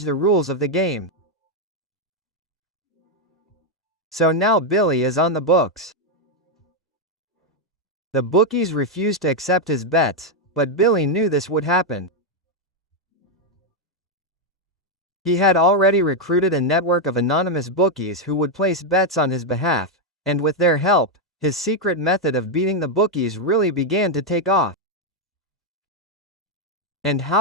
the rules of the game. So now Billy is on the books. The bookies refused to accept his bets, but Billy knew this would happen. He had already recruited a network of anonymous bookies who would place bets on his behalf, and with their help, his secret method of beating the bookies really began to take off. And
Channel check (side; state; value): both; normal; correlation 0.02